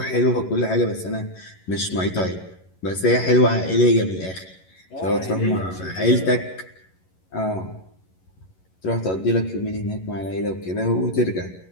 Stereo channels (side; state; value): right; late; 11 ms